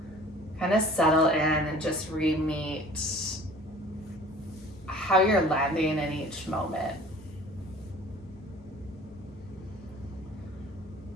kind of settle in and just re-meet how you're landing in each moment.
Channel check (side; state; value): both; normal; correlation 0.47